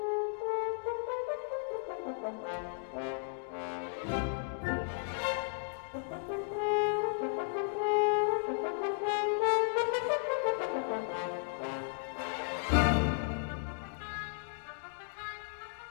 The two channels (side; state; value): right; silent; digital silence